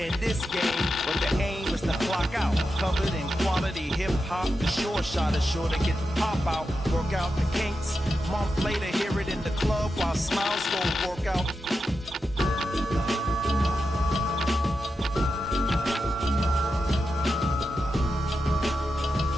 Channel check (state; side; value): normal; both; correlation 0.89